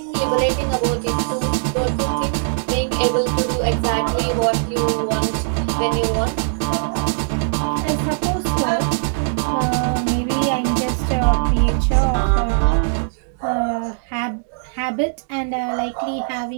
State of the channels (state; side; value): silent; left; digital silence